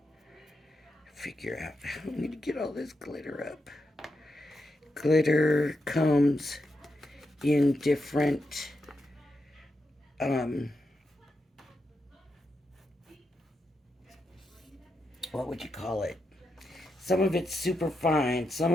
figure out how I'm going to get all this glitter up. Glitter comes in different what would you call it? Some of it's super fine, some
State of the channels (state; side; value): normal; both; correlation 0.85